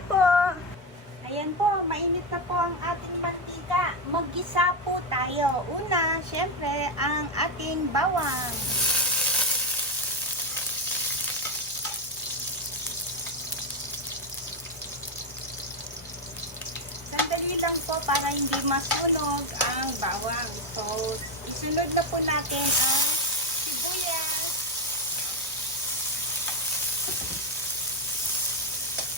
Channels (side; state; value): both; normal; correlation 0.09